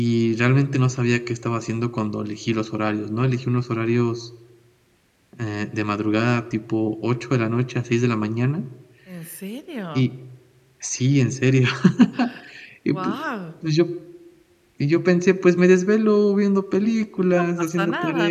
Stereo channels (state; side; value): identical; both; correlation 1.00